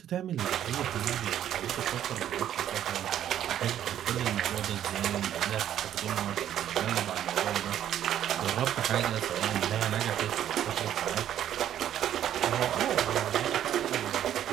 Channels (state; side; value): quieter; left; 10.9 dB